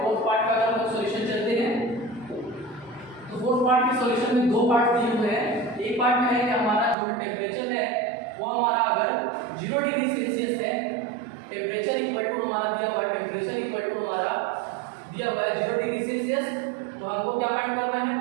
फोर्थ पार्ट का अगर हम सॉल्यूशन चलते हैं तो फोर्थ पार्ट के सॉल्यूशन में दो पार्ट दिए हुए हैं। एक पार्ट में है कि हमारा जो टेंपरेचर है वो हमारा अगर 0 डिग्री सेल्सियस है, टेंपरेचर इक्वल टू हमारा दिया हुआ है, टेंपरेचर इक्वल टू हमारा दिया हुआ है 0 डिग्री सेल्सियस, तो हमको क्या फाइंड करना है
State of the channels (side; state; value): left; drops out; at 7.0 s